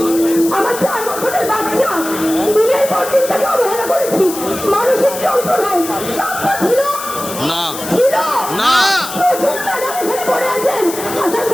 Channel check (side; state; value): left; noise; hiss, 9 dB below the sound